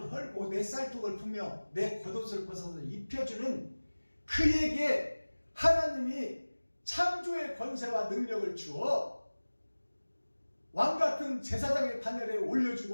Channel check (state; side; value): inverted; both; correlation -1.00